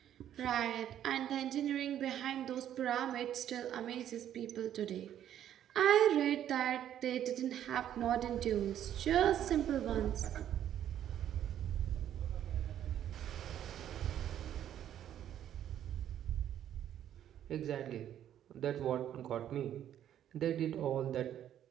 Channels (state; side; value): quieter; left; 10.7 dB